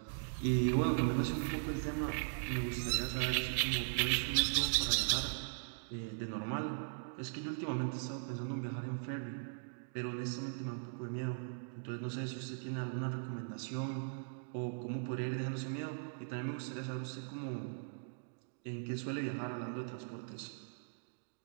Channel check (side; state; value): left; silent; digital silence